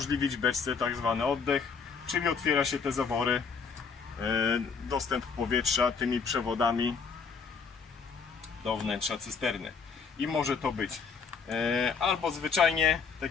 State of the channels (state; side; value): quieter; right; 5.6 dB